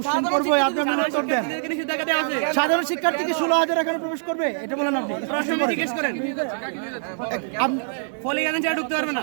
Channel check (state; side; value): silent; left; digital silence